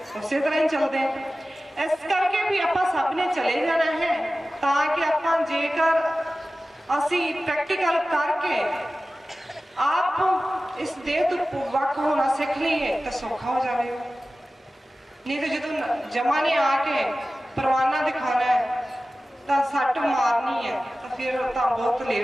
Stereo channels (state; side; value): normal; both; correlation 0.96